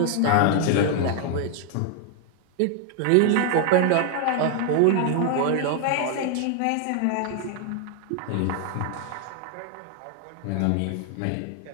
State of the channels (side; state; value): both; different; correlation 0.00